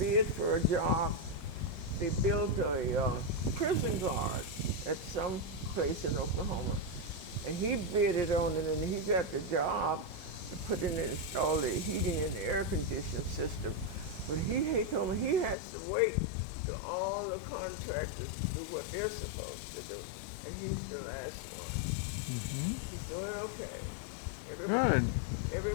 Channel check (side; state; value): right; drops out; at 15.6 s